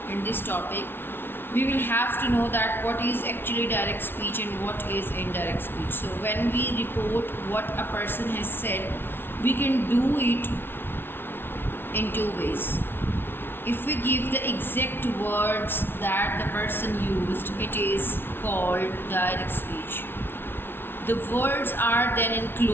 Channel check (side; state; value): right; late; 0.11 ms